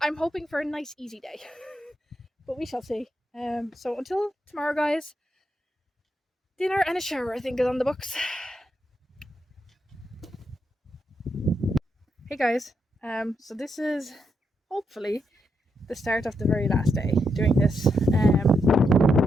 hoping for a nice easy day. But we shall see. So until tomorrow, guys, dinner and a shower, I think, is on the books. Hey guys, So this is hopefully the start of the very last day doing this. As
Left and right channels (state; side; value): normal; both; correlation 0.81